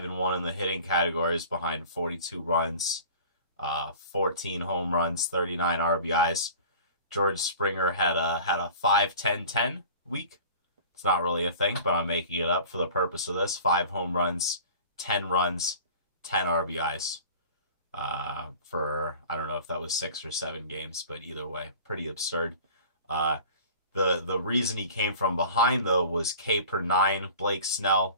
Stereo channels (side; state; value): both; inverted; correlation -0.42